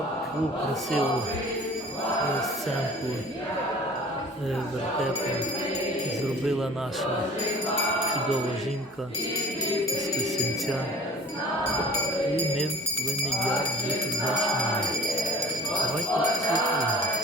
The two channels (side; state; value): both; normal; correlation 0.45